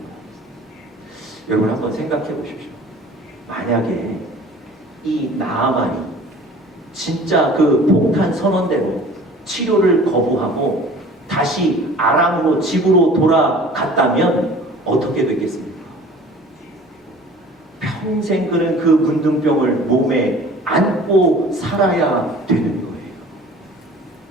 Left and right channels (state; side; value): normal; both; correlation 0.46